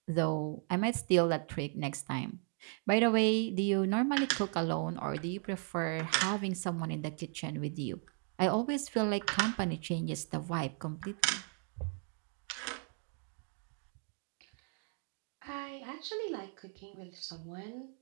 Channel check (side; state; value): left; quieter; 37.8 dB